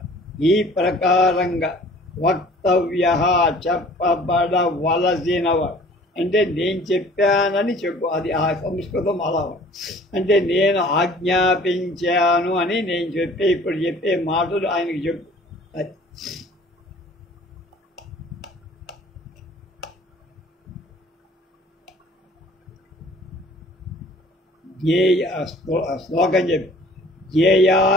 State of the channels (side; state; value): both; normal; correlation 0.51